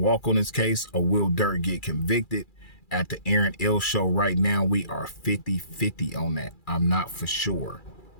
on this case, or will Durk get convicted? At the Aaron L Show right now, we are 50-50 on that. I'm not for sure.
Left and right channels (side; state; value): right; late; 2.3 ms